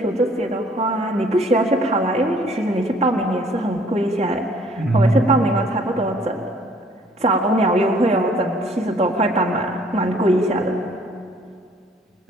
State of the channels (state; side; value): normal; both; correlation 0.58